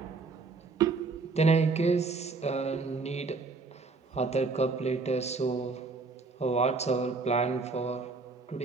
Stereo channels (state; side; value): quieter; left; 4.1 dB